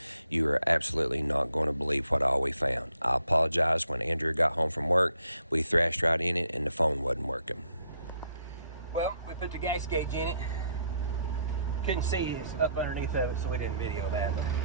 You are absolutely not going to believe what all we found. I apologize. When Andrew got home from work, we thrashed right in it and the phone wasn't working. Well, we put the gas gauge in it. Couldn't see it's up underneath of it, so we didn't video that. But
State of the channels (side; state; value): both; inverted; correlation -0.71